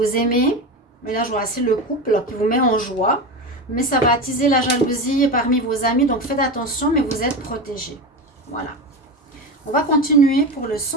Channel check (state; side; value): normal; both; correlation 0.22